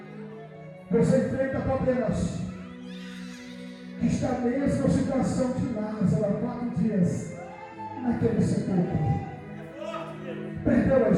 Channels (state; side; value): identical; both; correlation 1.00